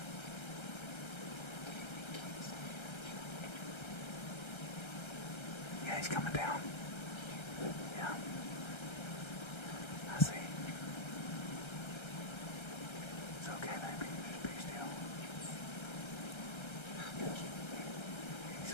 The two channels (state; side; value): late; right; 1.3 ms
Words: He's coming down. Yeah. I see. It's okay, baby. Just be still. He's